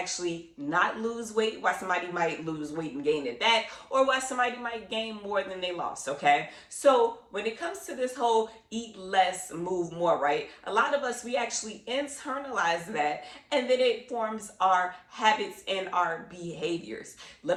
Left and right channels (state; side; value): identical; both; correlation 1.00